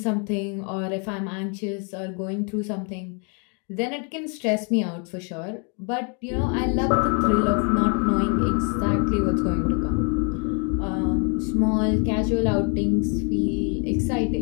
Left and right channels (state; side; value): quieter; right; 37.2 dB